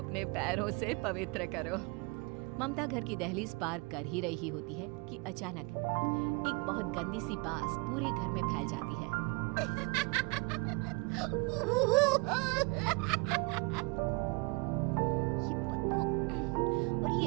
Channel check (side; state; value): left; quieter; 28.7 dB